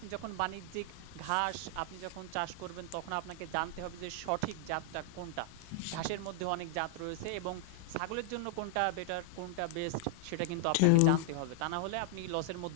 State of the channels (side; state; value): both; different; correlation -0.01